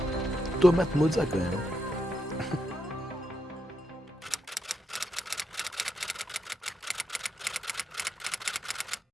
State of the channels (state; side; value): normal; both; correlation 0.82